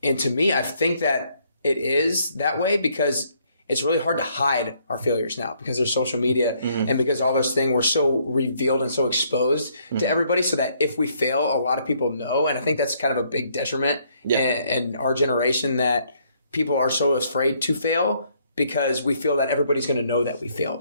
And to me, I think that it is that way because it's really hard to hide our failures now because there's social media and because all those things were so revealed and so exposed to everybody so that if we fail, a lot of people know. And I think that's kind of a big detriment in our generation that people are so afraid to fail because we feel that everybody's going to know that we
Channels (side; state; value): both; inverted; correlation -0.69